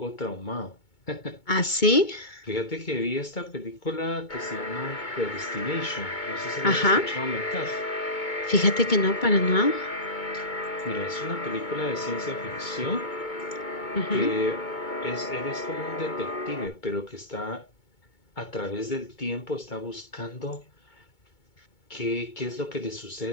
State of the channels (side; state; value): right; late; 2.2 ms